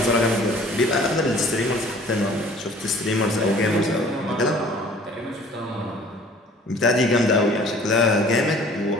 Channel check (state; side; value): normal; both; correlation 0.51